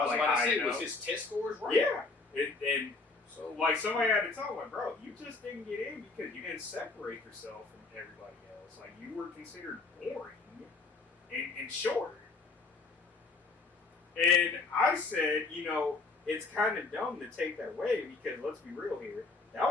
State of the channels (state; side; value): quieter; right; 3.8 dB